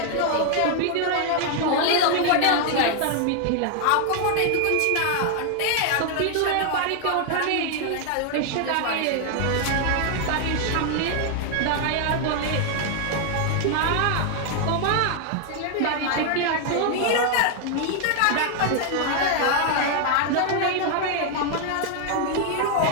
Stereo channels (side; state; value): both; different; correlation 0.00